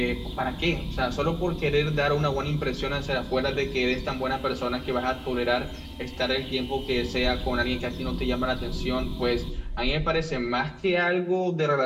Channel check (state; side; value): identical; both; correlation 1.00